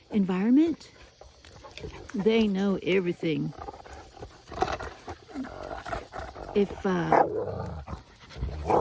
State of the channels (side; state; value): both; identical; correlation 1.00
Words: environment. They know everything. If